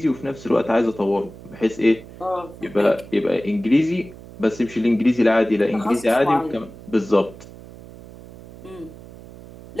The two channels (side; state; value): right; noise; hum, 18 dB below the sound